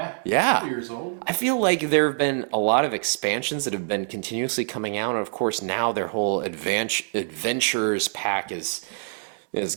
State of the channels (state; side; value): silent; left; 62 dB below the other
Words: Yeah. 2 years old. I feel like there have been a lot of expansions that have been continuously coming out, and of course now their whole adventurers pack has